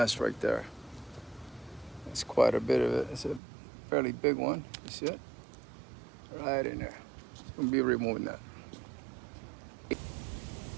right there. It's quite a bit of it. It's a fairly big one. You see it? Right in there. We'll be removing that.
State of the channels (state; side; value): drops out; left; at 3.4 s